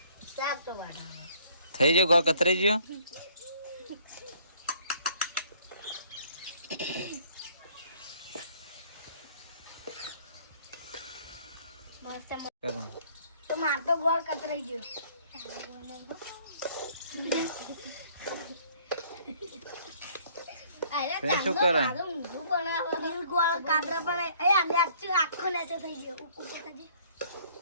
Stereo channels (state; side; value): inverted; both; correlation -0.59